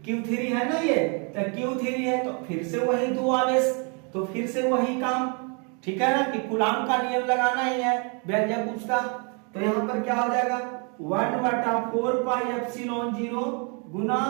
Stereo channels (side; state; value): left; quieter; 36.0 dB